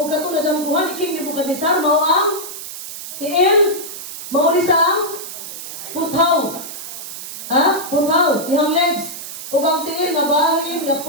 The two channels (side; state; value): right; noise; hiss, 10 dB below the sound